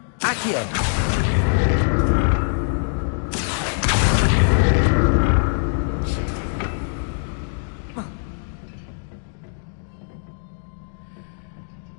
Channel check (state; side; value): silent; right; digital silence